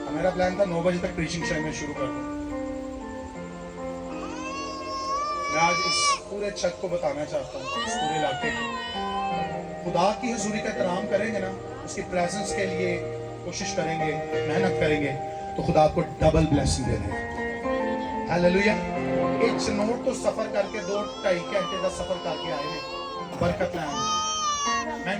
मेरा प्लान था 9 बजे तक प्रीचिंग शायद मैं शुरू कर दूं। मैं आज इस पूरे छत को बताना चाहता हूँ, इस पूरे इलाके को। खुदा की हुजूरी का एहतराम करेंगे ना, उसकी प्रेजेंस के लिए कोशिश करेंगे, मेहनत करेंगे, तो खुदा आपको डबल ब्लेसिंग दे देगा। हालेलुया। एक चनोट तो सफर करके 2-2.5 घंटे का सफर करके आए हैं बरकत लाने। मैं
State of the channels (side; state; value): both; identical; correlation 1.00